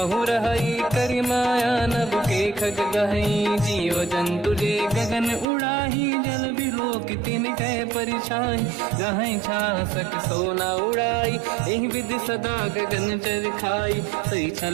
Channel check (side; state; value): left; drops out; at 5.5 s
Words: रहई करि माया नभ के खग गहई जीव जंतु जे गगन उड़ाही जल बिलोक तिन कह परिछाई गहई छासक सोना उड़ाई एहि विधि सदा गगन चर खाई सही